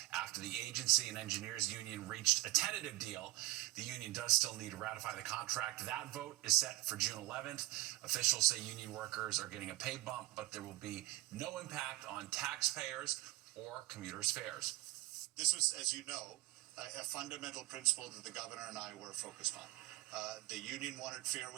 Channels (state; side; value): quieter; left; 18.3 dB